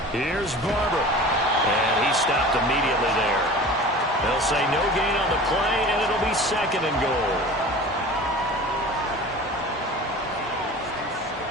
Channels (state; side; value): normal; both; correlation 0.39